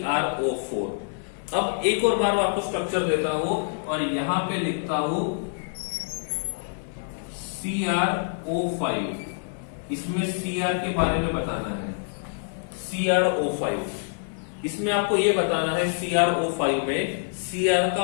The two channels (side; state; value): right; silent; 58 dB below the other